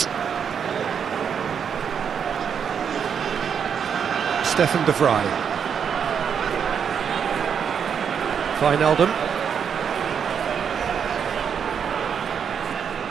Stefan de Vrij. Wijnaldum.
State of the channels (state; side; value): quieter; left; 7.4 dB